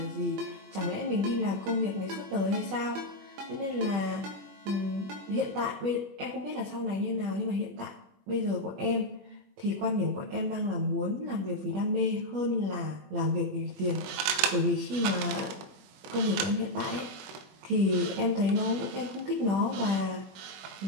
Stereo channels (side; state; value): left; late; 21 ms